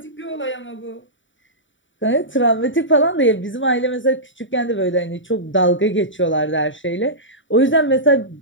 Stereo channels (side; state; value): right; late; 0.55 ms